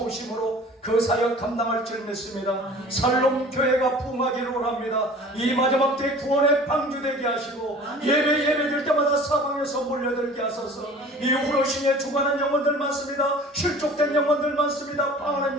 그 사역 감당할 줄 믿습니다. 살롬 교회가 부흥하기를 원합니다. 이 마지막 때 구원의 방주 되게 하시고 예배드릴 때마다 사방에서 몰려들게 하소서. 이 후로신에 주관한 영혼들 많습니다. 실족된 영혼들 많습니다.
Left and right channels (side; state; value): both; normal; correlation 0.45